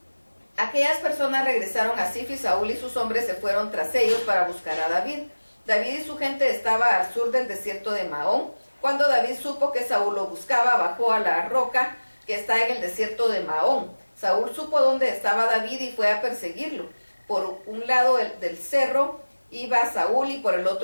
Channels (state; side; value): inverted; both; correlation -1.00